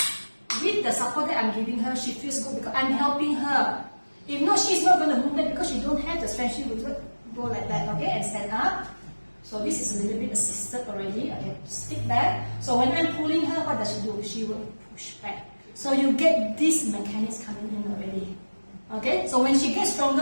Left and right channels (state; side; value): inverted; both; correlation -1.00